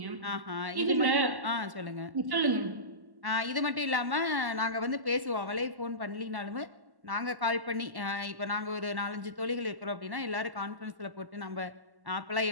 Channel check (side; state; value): left; late; 1.1 ms